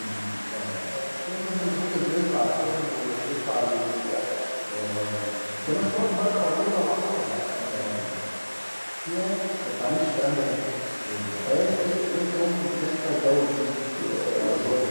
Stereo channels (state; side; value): inverted; both; correlation -1.00